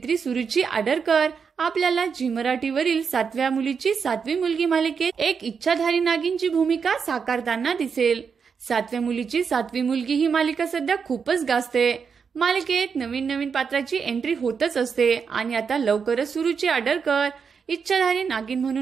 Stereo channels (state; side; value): quieter; left; 6.1 dB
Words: सुरुची आडारकर आपल्याला झी मराठीवरील 7व्या मुलीची 7वी मुलगी मालिकेत एक इच्छाधारी नागिनची भूमिका साकारताना दिसेल। 7व्या मुलीची 7वी मुलगी ही मालिका सध्या खूपच गाजते। मालिकेत नवीन पात्राची एंट्री होतच असते आणि आता लवकरच सुरुची आडारकर इच्छाधारी नागिन